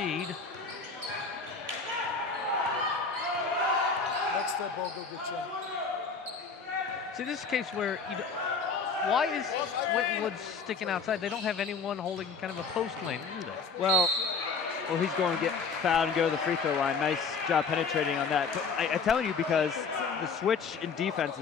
Next step, Bo, go get you. See, this is a case where why is Winton Woods sticking outside? They don't have anyone holding kind of a post lane, do they? Well, he's going to get fouled and go to the free throw line. Nice job penetrating on that. But I'm telling you, because the switch in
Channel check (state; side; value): quieter; right; 5.0 dB